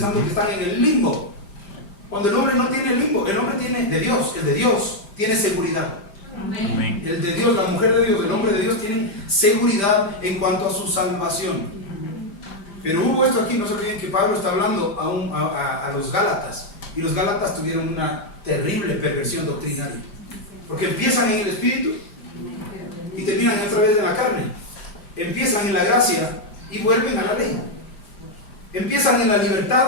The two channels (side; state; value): right; late; 5.1 ms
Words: que están en el limbo. Cuando el hombre no tiene limbo, el hombre tiene de Dios, el de Dios tiene seguridad. Amén. El de Dios, la mujer de Dios, el hombre de Dios tienen seguridad en cuanto a su salvación. Pero hubo esto aquí, no se olviden que Pablo está hablando a los Gálatas, y los Gálatas tuvieron una terrible perversión doctrinaria, porque empiezan en el espíritu y terminan otra vez en la carne. Empiezan en la gracia y vuelven a la ley. Empiezan en la